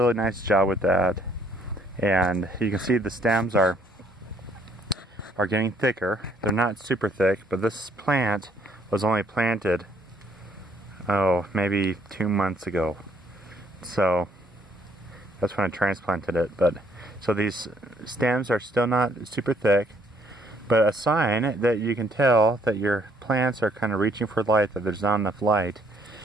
nice job with that, and you can see the stems are getting thicker. They're not super thick, but this plant was only planted maybe 2 months ago, so that's when I transplanted it. But so these stems are still not super thick, but a sign that you can tell that your plants are kind of reaching for light, that there's not enough light,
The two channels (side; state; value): both; normal; correlation 0.66